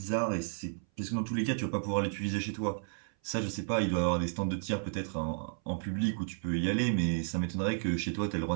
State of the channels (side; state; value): left; silent; 56 dB below the other